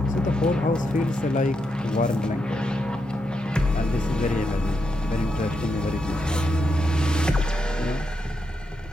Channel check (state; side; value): normal; both; correlation 0.83